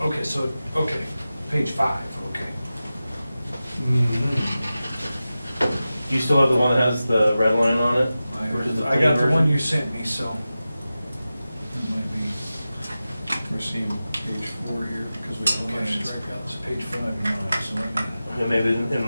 so, page 5, okay. Mhm. Do you still have the one that has the red line on it? versus the I got the clean one version? you sent me, so. It might be, We're seeing page 4 here because we don't have okay, it's strikeouts. page 5 and 9, so let me. Yeah, maybe in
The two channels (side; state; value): both; inverted; correlation -0.95